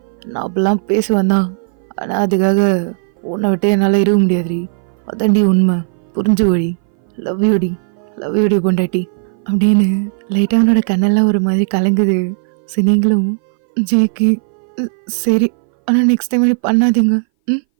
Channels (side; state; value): left; silent; 61 dB below the other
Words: நான் அப்படிலாம் பேசுவேன் தான், ஆனால் அதுக்காக உன்னை விட்டு என்னால் இருக்க முடியாதுடி. அதான்டி உண்மை, புரிஞ்சு வழி. லவ் யூடி, லவ் யூடி பொண்டாட்டி அப்படின்னு லைட்டாக அவனோட கண்ணெல்லாம் ஒரு மாதிரி கலங்குது. சரி நீங்களும் ஜேக்கு சரி, ஆனால் நெக்ஸ்ட் டைம் அப்படி பண்ணாதீங்க. ம்,